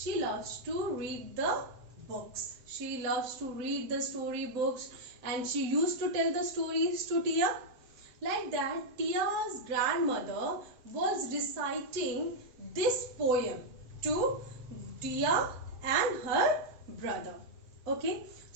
loves to read the books. She loves to read the story books, and she used to tell the stories to Tia. Like that, Tia's grandmother was reciting this poem to Tia and her brother. Okay,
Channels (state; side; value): late; left; 7.8 ms